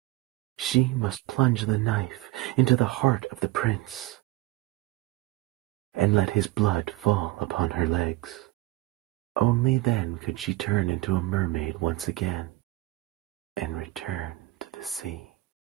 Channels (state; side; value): quieter; left; 18.4 dB